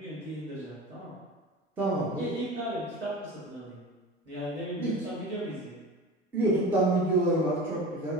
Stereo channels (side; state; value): both; normal; correlation 0.34